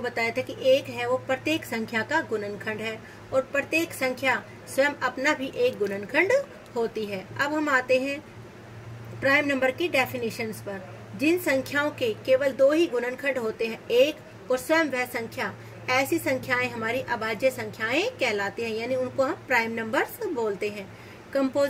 बताया था कि 1 है वो प्रत्येक संख्या का गुणनखंड है और प्रत्येक संख्या स्वयं अपना भी एक गुणनखंड होती है। अब हम आते हैं प्राइम नंबर की डेफिनेशंस पर। जिन संख्याओं के केवल 2 ही गुणनखंड होते हैं, 1 और स्वयं वह संख्या, ऐसी संख्याएं हमारी अभाज्य संख्याएं कहलाती हैं, यानी उनको हम प्राइम नंबर्स बोलते हैं।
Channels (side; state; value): both; identical; correlation 1.00